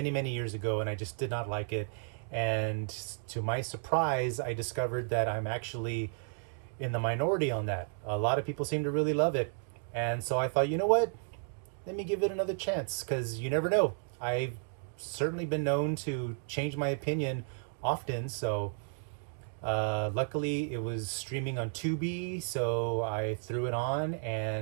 years ago and I just did not like it. And to my surprise, I discovered that I'm actually in the minority on that. A lot of people seem to really love it. And so I thought, you know what? Let me give it another chance because you never know. I've certainly been known to change my opinion often. So luckily it was streaming on Tubi. So I threw it on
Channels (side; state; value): left; silent; 56 dB below the other